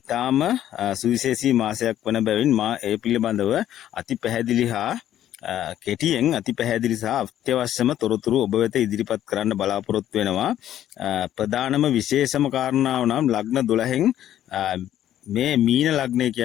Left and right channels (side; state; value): right; quieter; 11.7 dB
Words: සුවිශේෂී මාසයක් වන බැවින් මා ඒ පිළිබඳව අති පැහැදිලි හා කෙටියෙන් අති පැහැදිලි සහ අත්‍යවශ්‍යම තොරතුරු ඔබ වෙත ඉදිරිපත් කරන්න බලාපොරොත්තු වෙනවා. ප්‍රධානම විශේෂම කාරණාව නම් ලග්න 12න් මේ මීන ලග්නය